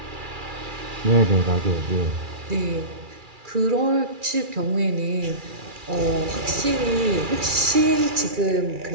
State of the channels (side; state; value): left; late; 2.3 ms